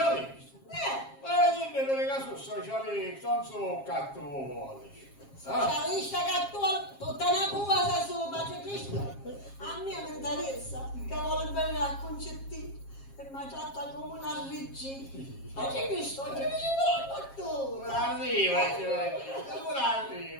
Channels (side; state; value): right; late; 7.4 ms